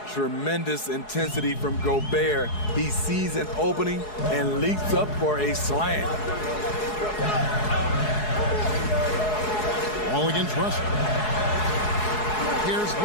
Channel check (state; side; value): late; right; 4.7 ms